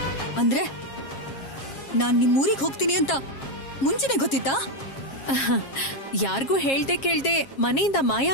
ಅಂದ್ರೆ ನಾನ್ ನಿಮ್ ಊರಿಗೆ ಹೋಗ್ತೀನಿ ಅಂತ ಮುಂಚೆನೆ ಗೊತ್ತಿತ್ತಾ? ಯಾರಿಗೂ ಹೇಳ್ದೆ ಕೇಳ್ದೆ ಮನೆಯಿಂದ ಮಾಯ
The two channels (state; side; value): late; right; 7.4 ms